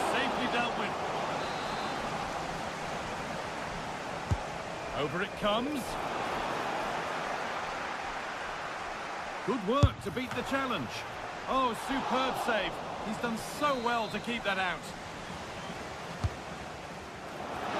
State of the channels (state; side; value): identical; both; correlation 1.00